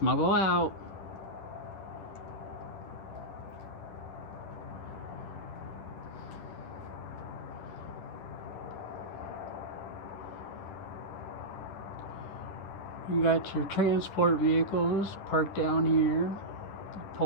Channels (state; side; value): late; right; 10 ms